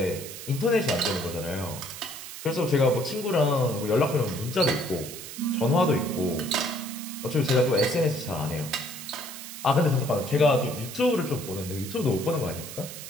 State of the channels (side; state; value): right; noise; hiss, 11 dB below the sound